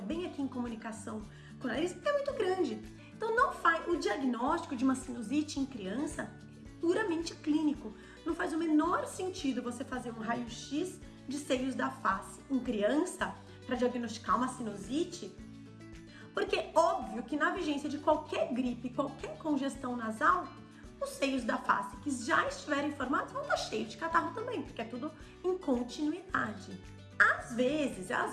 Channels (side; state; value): both; identical; correlation 1.00